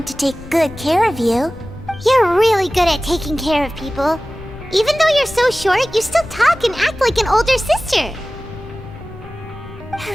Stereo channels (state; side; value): noise; left; rumble, 15 dB below the sound